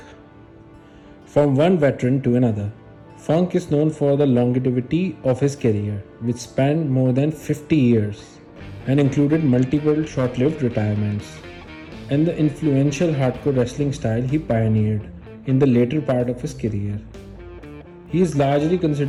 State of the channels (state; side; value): identical; both; correlation 1.00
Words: From one veteran to another, Funk is known for the longevity of his career, which spanned more than 50 years and included multiple short-lived retirements, and the influential hardcore wrestling style he pioneered in the later part of his career. He is largely